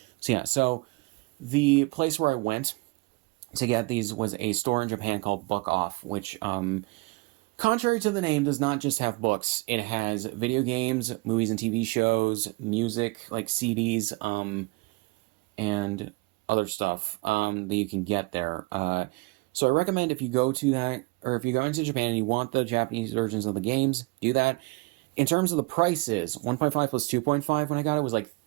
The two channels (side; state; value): left; quieter; 26.4 dB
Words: So yeah, so the place where I went to get these was a store in Japan called Book Off, which, contrary to the name, does not just have books. It has video games, movies and TV shows, music, like CDs, and other stuff that you can get there. So I recommend if you go to that, or if you go into Japan and you want the Japanese versions of the games, do that. In terms of the prices, 1.5 plus 2.5 when I got it was like